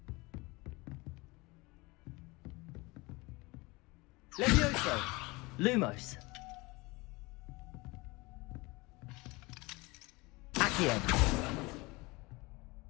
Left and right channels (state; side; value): quieter; right; 24.1 dB